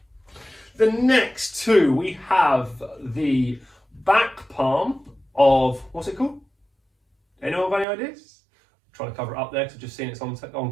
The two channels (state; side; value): drops out; left; at 7.9 s